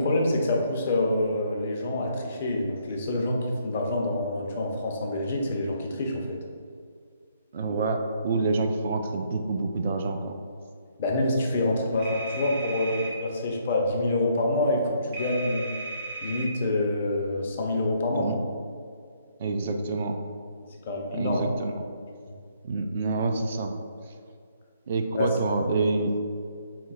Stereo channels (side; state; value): both; inverted; correlation -0.69